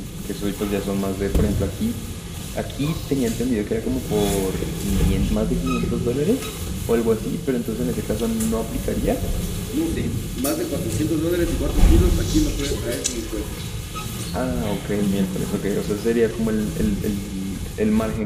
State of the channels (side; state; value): both; identical; correlation 1.00